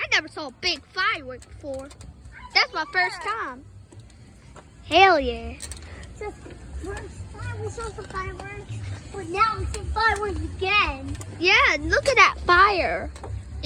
never saw a big firework before. That's my first time. Hell yeah. So, first time we saw some fireworks, but now we see fireworks again. Yeah, look at that fire.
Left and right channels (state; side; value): identical; both; correlation 1.00